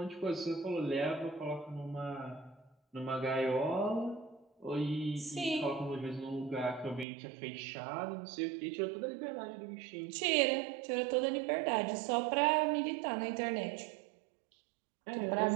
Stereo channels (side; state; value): left; drops out; at 7.1 s